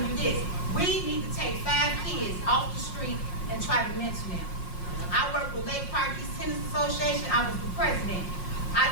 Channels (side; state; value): right; late; 5.6 ms